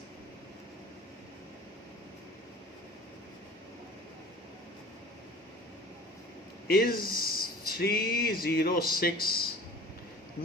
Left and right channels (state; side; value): normal; both; correlation 0.44